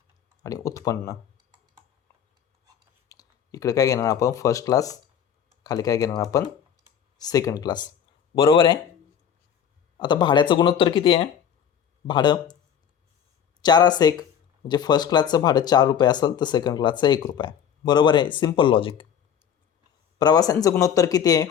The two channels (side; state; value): right; quieter; 8.5 dB